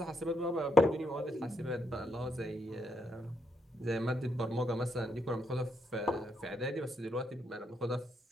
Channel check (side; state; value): both; normal; correlation 0.77